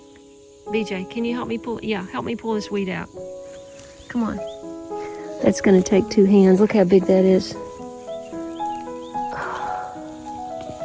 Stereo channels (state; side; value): identical; both; correlation 1.00